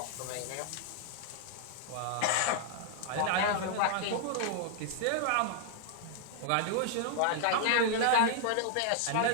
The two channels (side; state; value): both; different; correlation -0.01